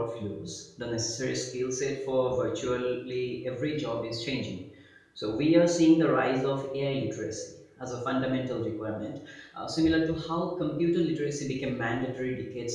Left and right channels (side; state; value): both; identical; correlation 1.00